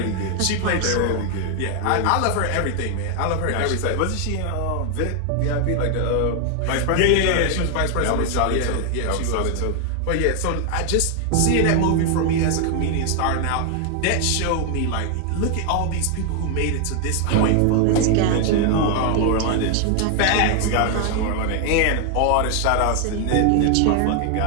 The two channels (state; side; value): different; both; correlation 0.00